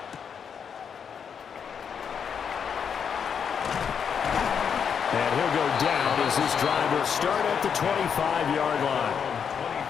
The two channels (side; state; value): right; quieter; 7.1 dB